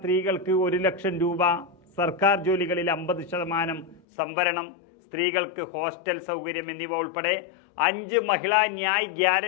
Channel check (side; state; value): right; drops out; at 4.0 s